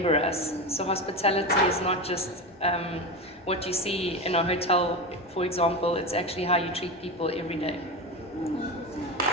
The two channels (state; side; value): normal; both; correlation 0.21